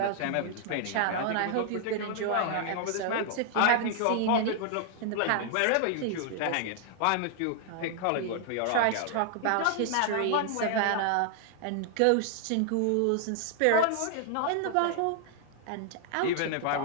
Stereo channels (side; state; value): both; different; correlation 0.00